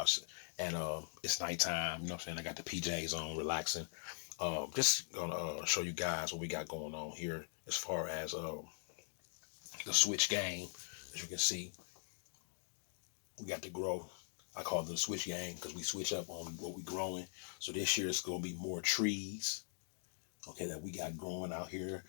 And it's nighttime, you know what I'm saying? I got the PJs on, relaxing. Just gonna show you guys what we got going on here as far as the switch game. As you can see, we got the grow. I call it the switch game because we switch up on what we growing. So this year it's gonna be more trees, okay, that we got growing out here.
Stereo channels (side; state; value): right; silent; digital silence